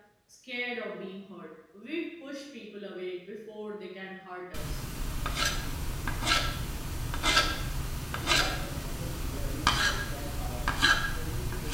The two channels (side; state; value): both; identical; correlation 1.00